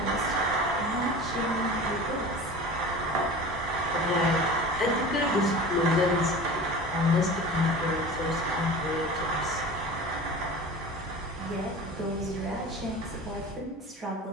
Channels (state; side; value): normal; both; correlation 0.36